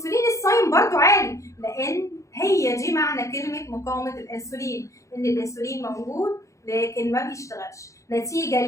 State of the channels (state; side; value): late; right; 0.15 ms